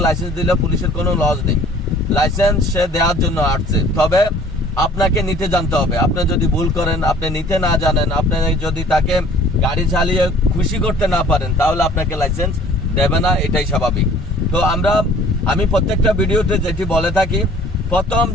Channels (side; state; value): both; normal; correlation 0.52